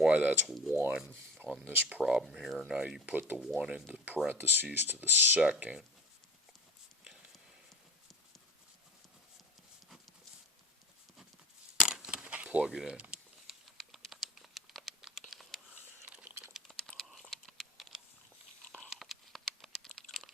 that's 1 on this problem here. Now you put the 1 into parentheses to the second. Plug it in.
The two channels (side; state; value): both; normal; correlation 0.34